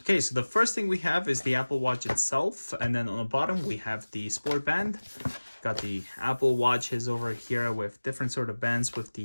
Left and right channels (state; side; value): inverted; both; correlation -1.00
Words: Okay, so the first thing we have is the Apple Watch itself, and then on the bottom we have the sport band. Got the Apple Watches over here with different sort of bands, with